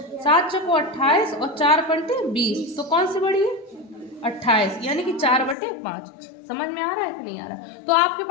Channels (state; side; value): drops out; right; at 5.6 s